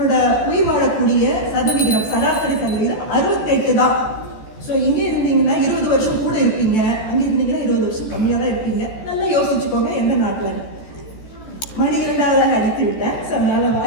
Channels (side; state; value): right; late; 14 ms